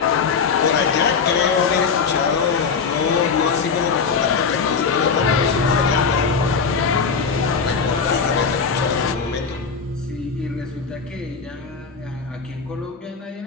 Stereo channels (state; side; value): quieter; right; 5.5 dB